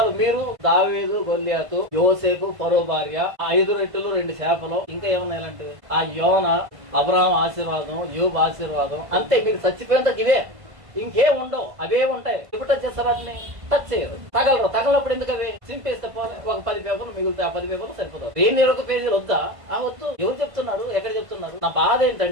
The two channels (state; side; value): late; left; 1.5 ms